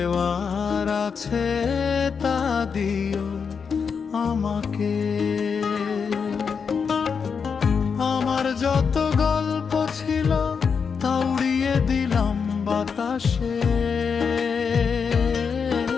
আছে তা দিও আমাকে। আমার যত গল্প ছিল তা উড়িয়ে দিলাম বাতাসে,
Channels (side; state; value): right; quieter; 6.0 dB